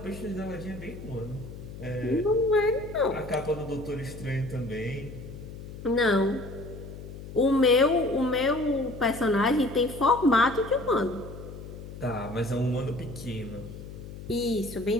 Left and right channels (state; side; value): noise; left; hum, 12 dB below the sound